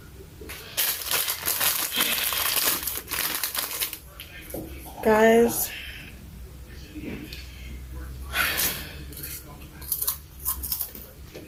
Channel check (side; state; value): both; identical; correlation 1.00